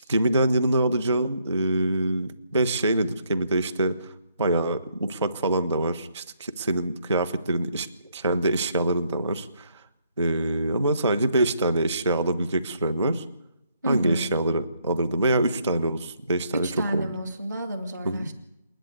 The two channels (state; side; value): inverted; both; correlation -0.71